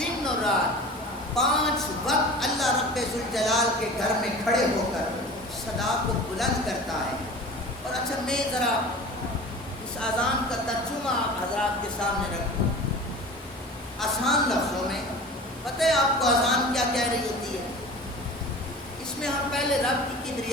اور رات 5 وقت اللہ رب ذوالجلال کے گھر میں کھڑے ہو کر صدا کو بلند کرتا ہے۔ اور اچھا میں ذرا اس اذان کا ترجمہ حضرات کے سامنے رکھوں آسان لفظوں میں۔ پتہ ہے آپ کو اذان کیا کہہ رہی ہوتی ہے؟ اس میں ہم پہلے رب کی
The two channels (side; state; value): both; normal; correlation 0.38